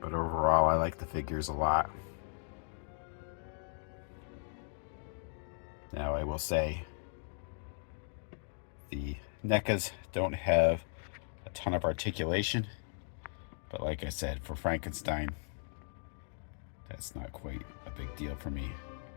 overall, I like the figures a lot. Now, I will say, the NECAs don't have a ton of articulation, but like I said, for Frankenstein, that's not quite a big deal for me,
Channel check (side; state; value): right; silent; digital silence